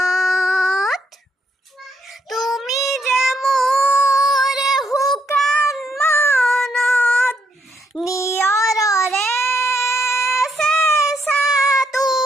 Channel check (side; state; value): both; normal; correlation 0.75